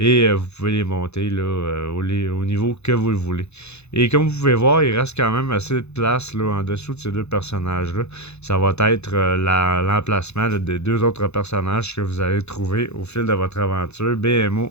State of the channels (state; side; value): late; right; 0.81 ms